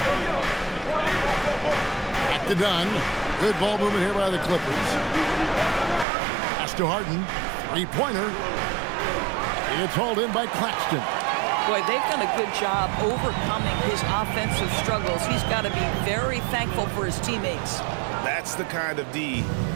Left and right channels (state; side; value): drops out; left; at 6.1 s